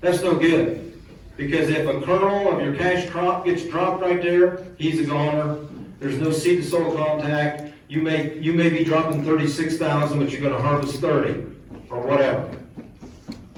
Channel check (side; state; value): both; identical; correlation 1.00